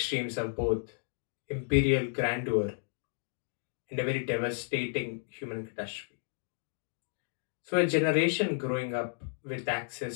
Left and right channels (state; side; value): silent; right; digital silence